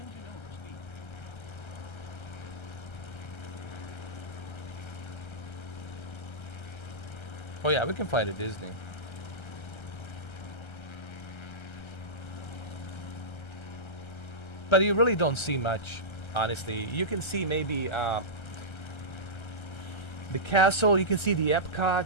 overspeed. oh yeah, we can fly to Disney. But you really don't see much, honestly. You can see maybe the castle. You can see the Epcot,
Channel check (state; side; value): late; right; 1.3 ms